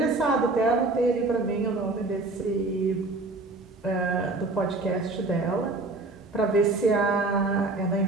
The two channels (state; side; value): quieter; left; 3.2 dB